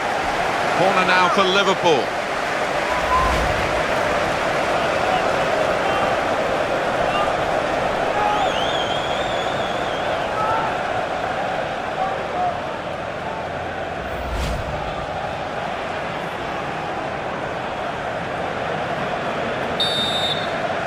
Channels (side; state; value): both; identical; correlation 1.00